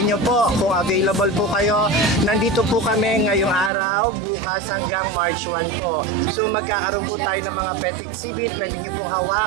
po, kung available po kayo, nandito po kami ngayong araw, bukas hanggang March 1 po. So magkakaroon po tayo ng mga pet exhibit. Pwede nyo pong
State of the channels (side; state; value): left; drops out; at 3.7 s